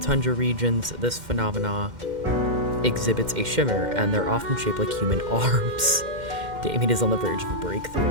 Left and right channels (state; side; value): late; left; 2.1 ms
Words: regions, this phenomena exhibits a shimmer, and they're often shaped like human arms. Damien is on the verge of a breakthrough.